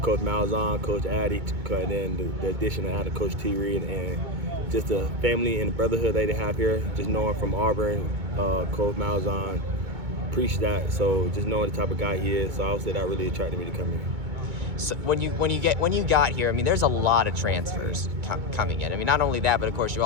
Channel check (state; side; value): late; left; 2.2 ms